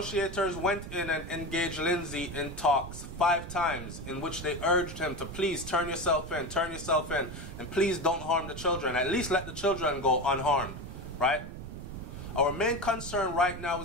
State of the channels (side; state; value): right; noise; rumble, 10 dB below the sound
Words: went in and engaged Lindsay in talks 5 times, in which they urged him to please turn yourself in, and please don't harm the children. At least let the children go unharmed, right? Our main concern right now